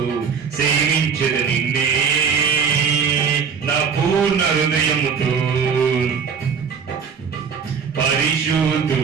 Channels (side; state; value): left; quieter; 6.4 dB